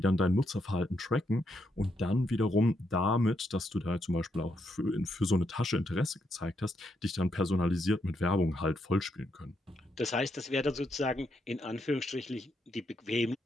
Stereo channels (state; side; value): normal; both; correlation 0.79